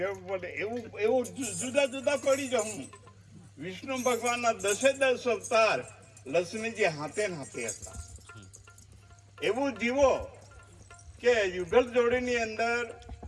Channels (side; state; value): both; identical; correlation 1.00